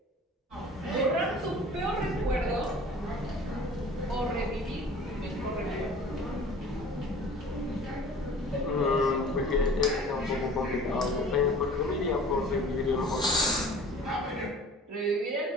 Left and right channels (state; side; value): normal; both; correlation 0.45